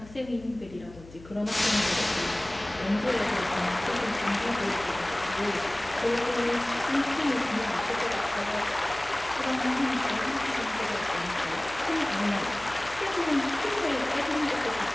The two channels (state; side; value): noise; left; hum, 19 dB below the sound